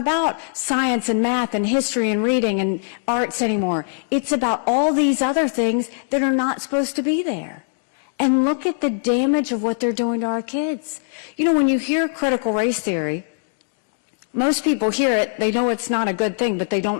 science and math and history and reading and arts anymore. It's about all these other things that are not supposed to be there. And look at the damage of what they're doing to our kids. When you hear critical race theory, most people hear it, they know it's not a good thing, but they don't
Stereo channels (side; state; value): right; silent; digital silence